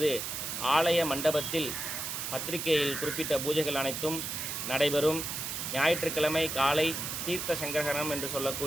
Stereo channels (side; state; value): right; noise; hiss, 4 dB below the sound